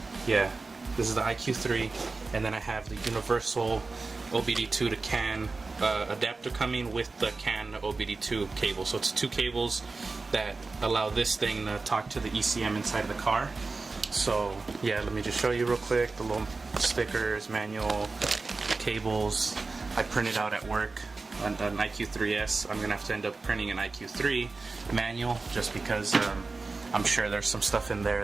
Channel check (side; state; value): left; quieter; 3.8 dB